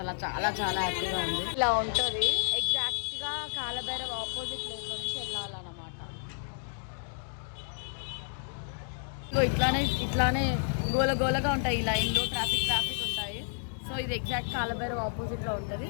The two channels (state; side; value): silent; right; digital silence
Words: చాలా చాలా హ్యాపీగా ఉంది. ఇలా ఉంటుంది ఎగ్జాక్ట్గా కాలభైరవ్ ఆపోజిట్ ప్లేస్ నుంచి వెళ్ళాలన్నమాట. ఇట్లానే గోలగా ఉంటాయి ఈ లైన్లో, ట్రాఫిక్ ఉంటాయి. సో ఇది ఎగ్జాక్ట్ కాలభైరవ్ ఆపోజిట్లో ఉంటుంది.